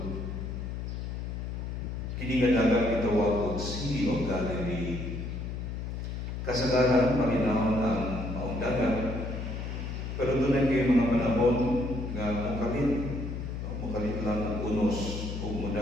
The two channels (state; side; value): noise; left; hum, 5 dB below the sound